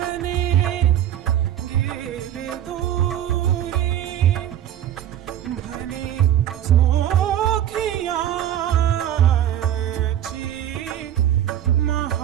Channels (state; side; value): quieter; left; 11.2 dB